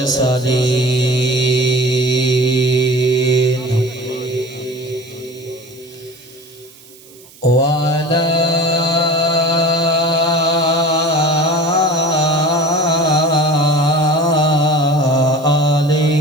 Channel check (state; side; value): noise; right; hiss, 24 dB below the sound